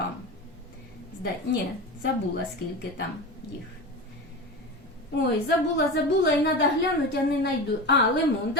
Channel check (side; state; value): both; normal; correlation 0.27